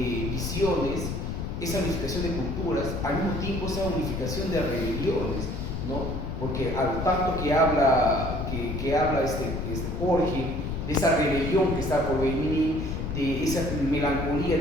visiones, esa unificación de culturas, al mismo tiempo esa unificación de religiones, ¿no? Porque al tanto que habla Jorge de esa rebelión que está por venir, de esa melancolía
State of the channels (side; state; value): left; noise; rumble, 4 dB below the sound